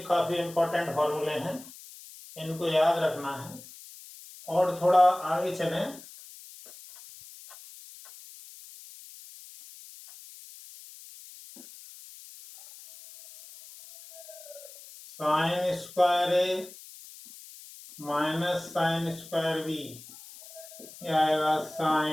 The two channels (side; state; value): left; noise; hiss, 18 dB below the sound